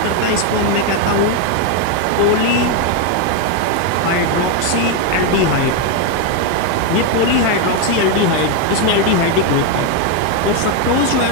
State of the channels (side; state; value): both; different; correlation 0.02